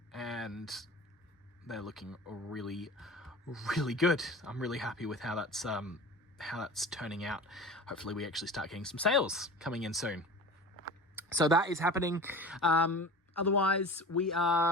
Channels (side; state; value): both; normal; correlation 0.36